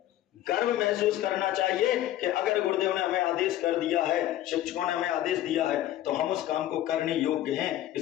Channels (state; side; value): quieter; right; 13.4 dB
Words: गर्व महसूस करना चाहिए कि अगर गुरुदेव ने हमें आदेश कर दिया है, शिक्षकों ने हमें आदेश दिया है, तो हम उस काम को करने योग्य हैं,